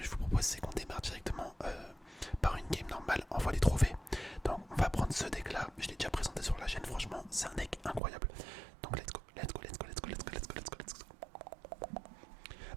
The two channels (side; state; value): left; drops out; at 8.0 s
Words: je vous propose c'est qu'on démarre directement par une game normale en voie des trophées. Donc on va prendre ce deck là, je l'ai déjà présenté sur la chaîne, franchement c'est un deck incroyable. Donc let's go, let's go, let's go, let's go, let's go, let's go, let's go, let's go.